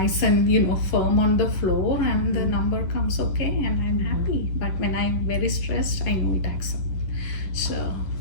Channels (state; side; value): late; right; 11 ms